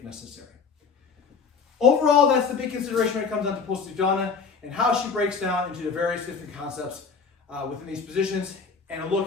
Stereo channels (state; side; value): quieter; right; 5.4 dB